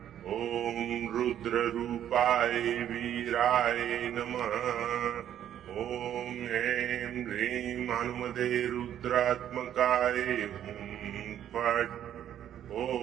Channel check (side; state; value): left; quieter; 10.6 dB